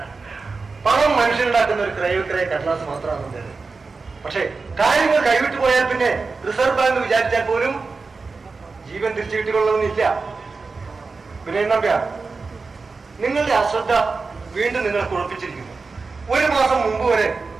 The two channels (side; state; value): left; quieter; 4.2 dB